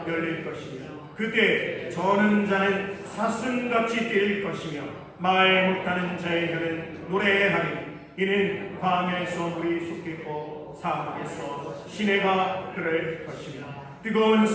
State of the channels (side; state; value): both; identical; correlation 1.00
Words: 열릴 것이며 그때 저는 자는 사슴같이 뛸 것이며 말 못하는 자의 혀는 노래하리. 이는 광야에서 물이 솟겠고 사막에서 시내가 흐를 것이며 뜨거운